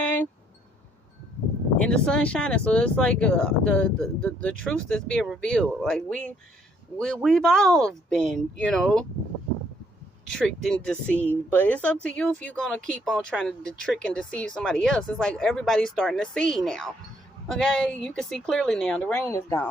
and the sun shining, so it's like the truth that's being revealed. Like we've all been, tricked and deceived, but it's up to you if you're gonna keep on trying to trick and deceive somebody else. It's like everybody's starting to see now. Okay, you can see clearly now. The rain is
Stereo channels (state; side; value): normal; both; correlation 0.68